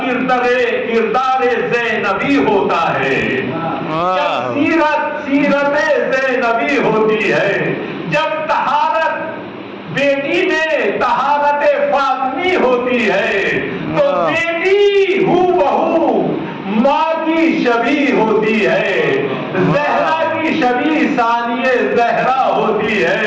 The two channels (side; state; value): both; identical; correlation 1.00